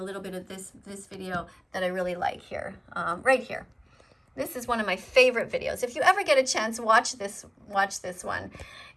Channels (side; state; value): both; identical; correlation 1.00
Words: little bit of this video that I really like here, right here. This is one of my favorite videos. If you ever get a chance, watch this one.